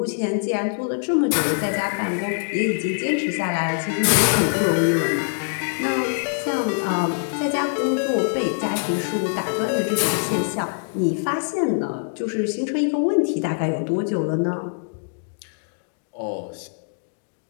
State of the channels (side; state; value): right; silent; digital silence